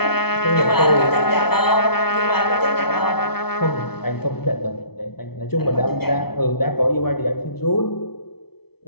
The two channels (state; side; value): late; right; 0.96 ms